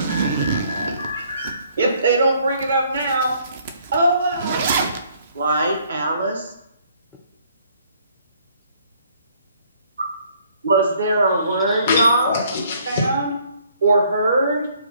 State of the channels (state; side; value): inverted; both; correlation -0.64